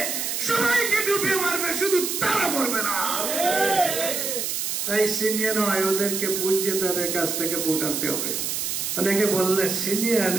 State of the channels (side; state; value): right; noise; hiss, 2 dB below the sound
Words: সবাইকে ডুবিয়ে মারবে, শুধু তারা মরবে না। তাই সিনিয়র নয়, ওদেরকে বুঝিয়ে তাদের কাছ থেকে ভোট আনতে হবে। অনেকে বললে সিনিয়র